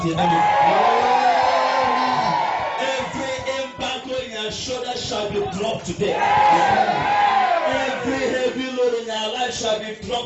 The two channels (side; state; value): both; identical; correlation 1.00